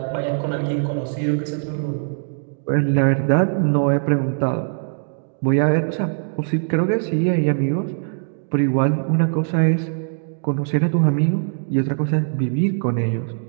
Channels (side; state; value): left; silent; digital silence